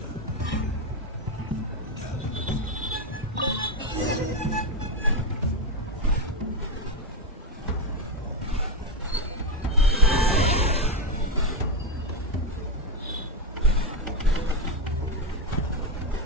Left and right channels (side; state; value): both; normal; correlation 0.08